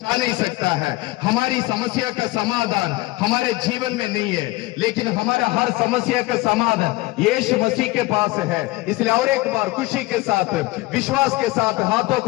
नहीं सकता है। हमारी समस्या का समाधान हमारे जीवन में नहीं है, लेकिन हमारा हर समस्या का समाधान यीशु मसीह के पास है। इसलिए और एक बार खुशी के साथ, विश्वास के साथ हाथों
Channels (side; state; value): right; quieter; 20.4 dB